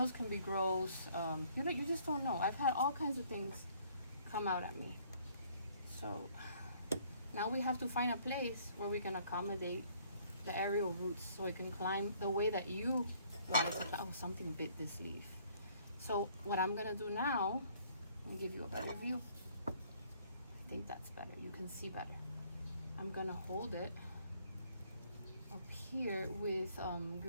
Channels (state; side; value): inverted; both; correlation -0.61